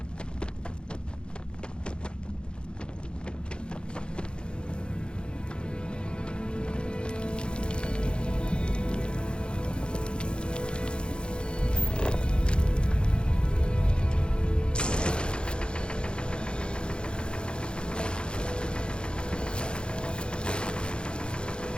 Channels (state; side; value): late; right; 0.052 ms